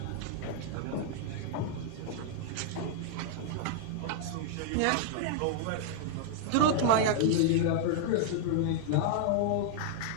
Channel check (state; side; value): different; both; correlation -0.01